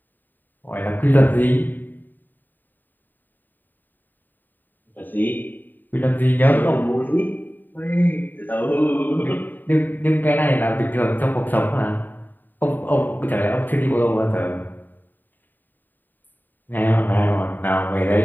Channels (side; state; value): right; late; 0.090 ms